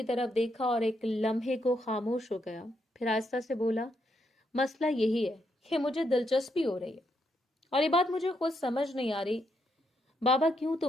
طرف دیکھا اور ایک لمحے کو خاموش ہو گیا، پھر آہستہ سے بولا، مسئلہ یہی ہے کہ مجھے دلچسپی ہو رہی ہے، اور یہ بات مجھے خود سمجھ نہیں آ رہی بابا کیوں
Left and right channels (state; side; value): normal; both; correlation 0.78